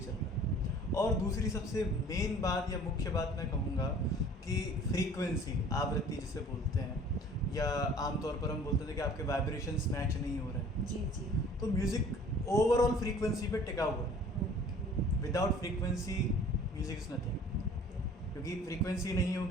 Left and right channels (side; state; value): both; normal; correlation 0.50